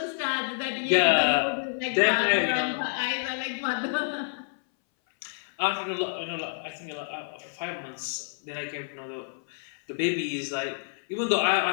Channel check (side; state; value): right; silent; 59 dB below the other